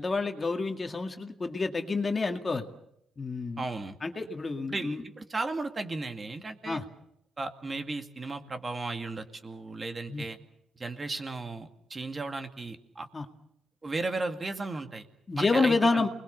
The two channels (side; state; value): both; normal; correlation 0.90